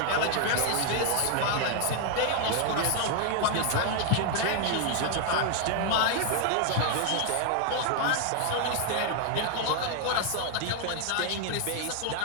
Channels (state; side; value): different; both; correlation 0.00